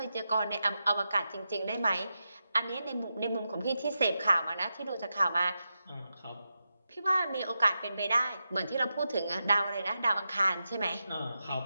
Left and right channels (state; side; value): inverted; both; correlation -0.89